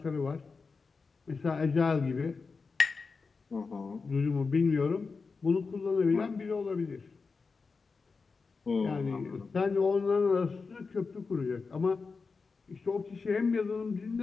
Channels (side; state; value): right; quieter; 4.6 dB